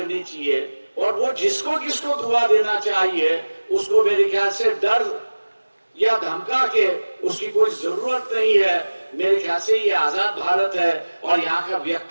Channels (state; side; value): inverted; both; correlation -1.00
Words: चाहिए और वो जिसको किसको दुआ देना चाहिए उसको मेरे ख्याल से डर या धमका के उसकी कोई जरूरत नहीं है। मेरे ख्याल से ये आजाद भारत है और यहाँ का